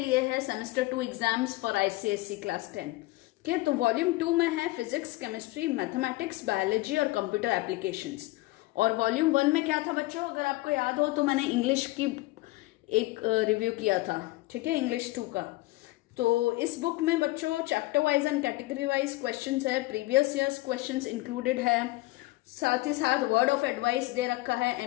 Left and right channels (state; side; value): quieter; right; 20.1 dB